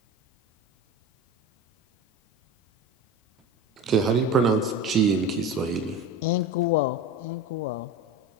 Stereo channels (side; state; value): both; normal; correlation 0.30